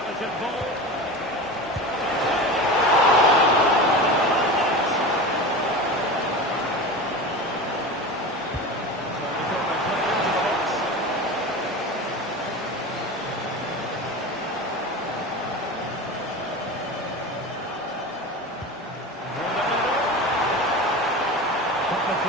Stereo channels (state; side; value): normal; both; correlation 0.29